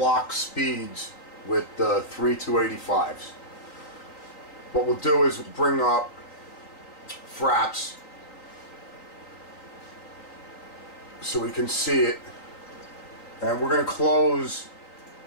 speeds with the 3285s. What we'll do is bring up Fraps so we can see it, and we're going to close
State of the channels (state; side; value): late; right; 3.9 ms